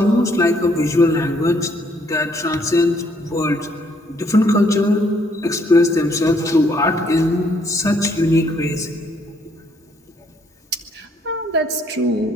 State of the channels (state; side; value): normal; both; correlation 0.67